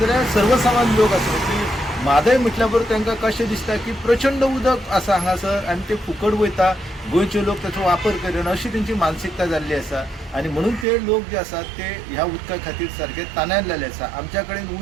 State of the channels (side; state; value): left; drops out; at 10.9 s